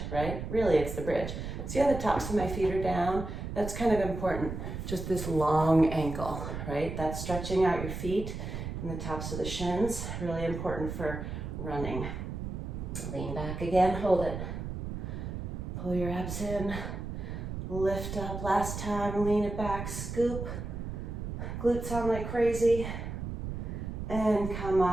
right? Really, it's the bridge. See how the tops of my feet are down? That's kind of important. Just this long ankle, right? That's stretching out your feet and the tops of the shins. Really important for running. Lean back again, hold it. Pull your abs in. Lift up last time, lean it back, scoop. Glutes on like crazy. And come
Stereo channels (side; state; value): right; noise; rumble, 6 dB below the sound